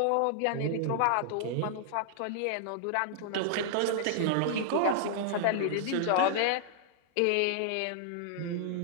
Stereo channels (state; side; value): different; both; correlation -0.01